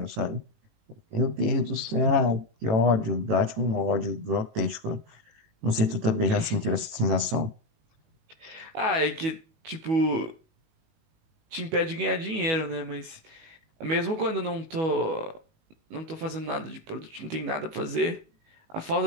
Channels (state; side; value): late; left; 19 ms